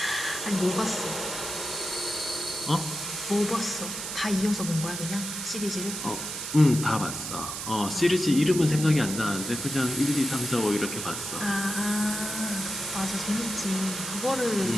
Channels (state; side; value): noise; right; hiss, 6 dB below the sound